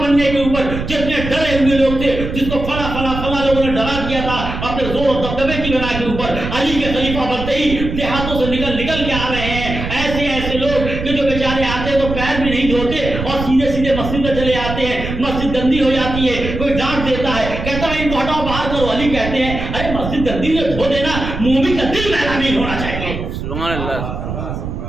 بننے کے اوپر جتنے ڈرے ہوئے لوگ تھے، جس کو فلاں لوگوں نے ڈرا دیا تھا اپنے زور و دبدبے کی بنا کے اوپر، علی کے خلیفہ بنتے ہی دیہاتوں سے نکل کے آ رہے ہیں. ایسے لوگ کہ جو بیچارے آتے ہیں تو پیر بھی نہیں دھوتے اور سیدھے مسجد میں چلے آتے ہیں. مسجد گندی ہو جاتی ہے، کوئی ڈانٹ دیتا ہے، کہتا ہے ان کو ہٹاؤ باہر کرو. علی کہتے ہیں ارے مسجد گندی ہے دھو دینا، مومن کا دل میلا نہیں ہونا چاہیے. سبحان اللہ.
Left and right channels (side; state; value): right; noise; rumble, 6 dB below the sound